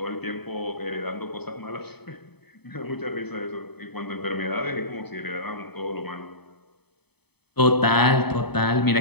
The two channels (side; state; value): right; late; 0.98 ms